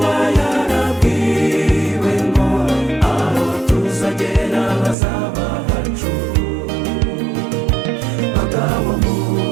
yarabwiwe ngo aho tuzagera hazaba hacu. Bagabo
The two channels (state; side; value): drops out; left; at 5.0 s